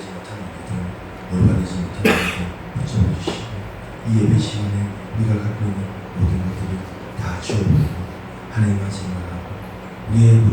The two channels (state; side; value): identical; both; correlation 1.00